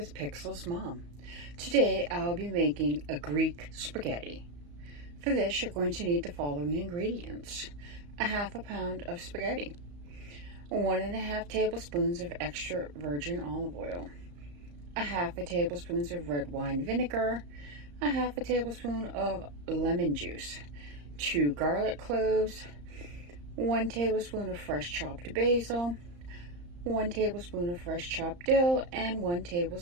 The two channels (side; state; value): left; late; 34 ms